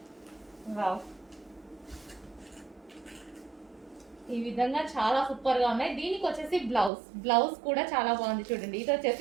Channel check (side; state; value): left; drops out; at 6.9 s